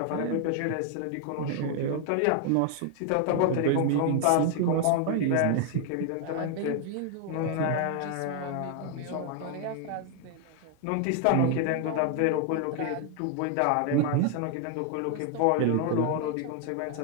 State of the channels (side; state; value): both; different; correlation 0.00